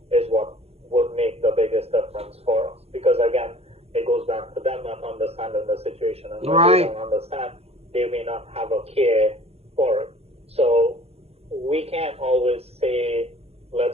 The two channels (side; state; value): left; late; 0.29 ms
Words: is what would make the biggest difference for us. Because again, it goes back to them not understanding the situation, and when they don't understand, they may not have a care for it. So we can't always say,